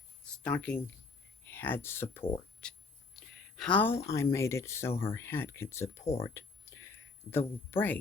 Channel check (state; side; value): quieter; right; 4.2 dB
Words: stocking head support. How I made it so her head could support the